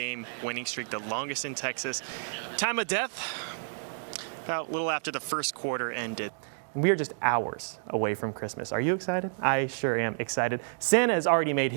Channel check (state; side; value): silent; left; digital silence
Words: winning streak, the longest in Texas. Time of death, about a little after the first quarter ended. We are just hours away from Christmas. Are you excited? I sure am excited. Santa has already made